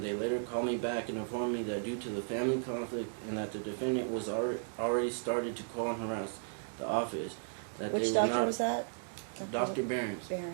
they later called me back and informed me that due to the family conflict and that the defendant was already started to call and harass the office, that Which they were doctor not. was that? Dr. Barron's. Barron.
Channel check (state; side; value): silent; left; digital silence